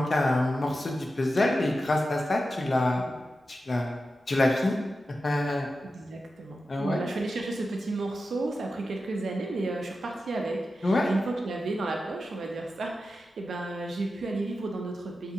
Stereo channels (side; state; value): both; normal; correlation 0.91